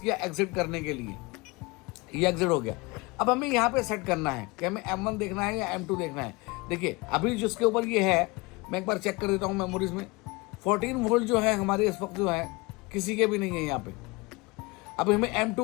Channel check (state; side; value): quieter; right; 25.1 dB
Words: एग्जिट करने के लिए, ये एग्जिट हो गया। अब हमें यहाँ पे सेट करना है कि हमें M1 देखना है या M2 देखना है। देखिए अभी जिसके ऊपर ये है, मैं एक बार चेक कर देता हूँ मेमोरीज में। 14 वोल्ट जो है हमारे इस वक्त जो है किसी के भी नहीं है यहाँ पे। अब हमें